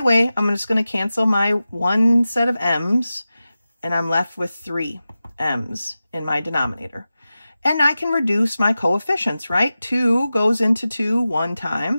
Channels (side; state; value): both; inverted; correlation -0.94